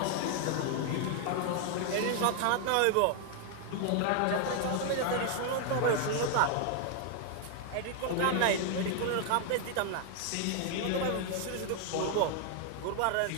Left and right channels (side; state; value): both; different; correlation 0.00